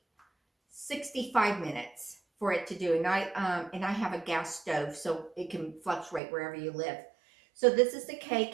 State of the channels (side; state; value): left; drops out; at 6.2 s